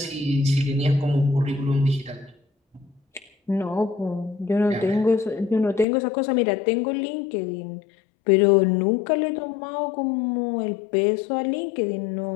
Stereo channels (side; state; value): right; drops out; at 5.9 s